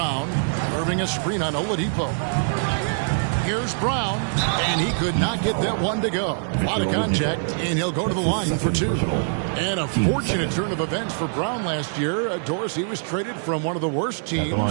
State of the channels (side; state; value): left; silent; digital silence